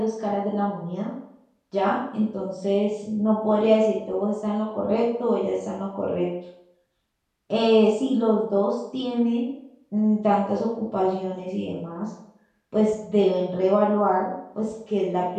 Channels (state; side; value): identical; both; correlation 1.00